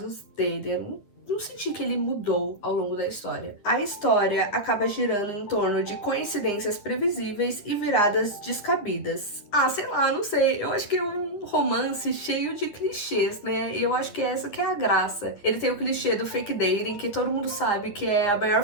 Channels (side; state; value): right; late; 10 ms